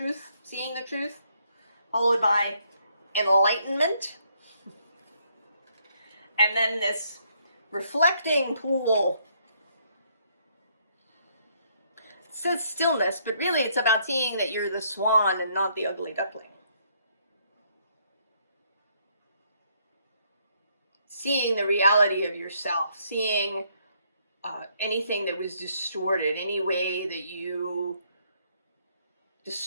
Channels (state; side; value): inverted; both; correlation -0.70